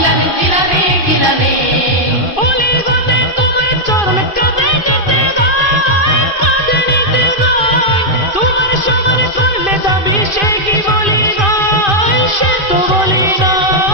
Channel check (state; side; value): late; right; 2.5 ms